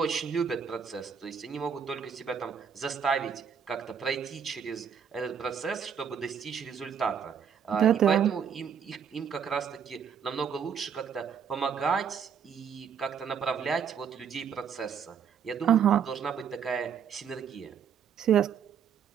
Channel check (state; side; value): quieter; left; 7.4 dB